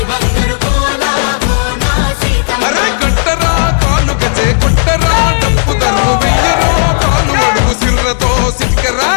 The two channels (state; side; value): silent; right; digital silence